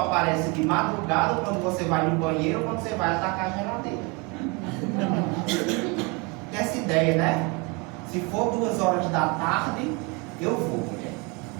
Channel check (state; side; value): quieter; left; 29.4 dB